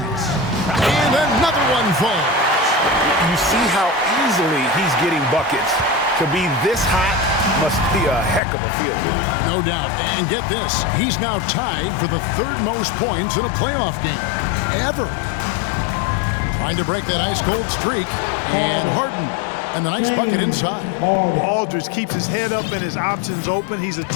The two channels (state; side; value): drops out; right; at 8.4 s